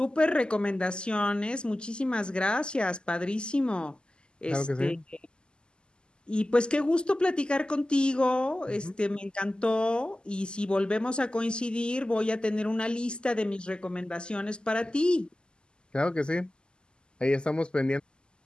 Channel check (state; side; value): late; right; 0.048 ms